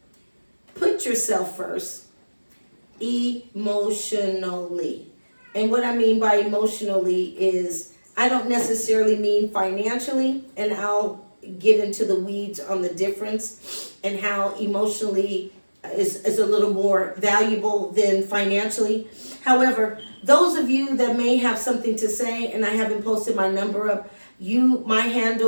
Put yourself first emotionally. And what I mean by emotionally is I don't necessarily mean financially, and I'll get into the weeds on the difference and how emotionally is a little more valuable than financially. However, those of you that may have something to say, and I haven't posted my number up, my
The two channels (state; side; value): inverted; both; correlation -1.00